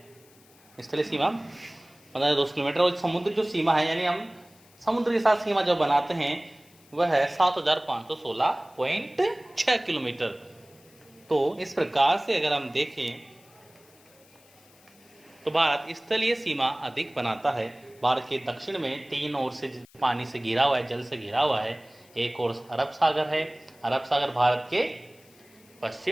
स्थलीय सीमा 15,200 किलोमीटर, और समुद्र जो सीमा है, यानी हम समुद्र के साथ सीमा जो बनाते हैं वह है 7,516.6 किलोमीटर। तो इस प्रकार से अगर हम देखें तो भारत स्थलीय सीमा अधिक बनाता है। भारत के दक्षिण में 3 ओर से पानी से घिरा हुआ है, जल से घिरा हुआ है। एक ओर अरब सागर है, अरब सागर भारत के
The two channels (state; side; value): noise; left; hiss, 28 dB below the sound